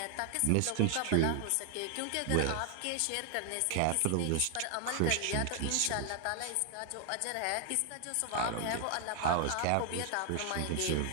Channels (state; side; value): different; both; correlation 0.00